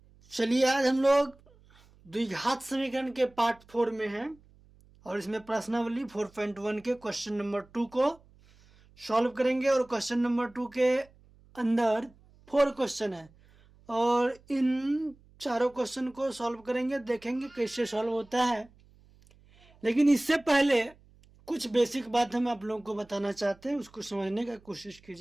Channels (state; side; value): noise; right; hum, 28 dB below the sound